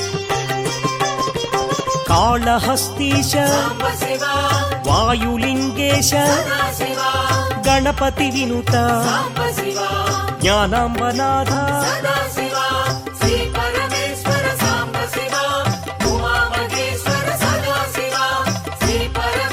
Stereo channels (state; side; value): identical; both; correlation 1.00